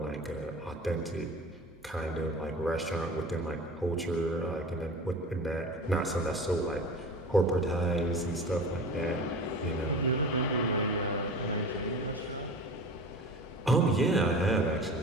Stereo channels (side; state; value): right; noise; hum, 29 dB below the sound